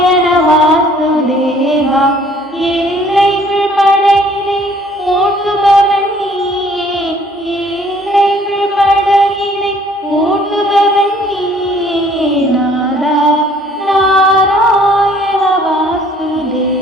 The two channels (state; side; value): normal; both; correlation 0.58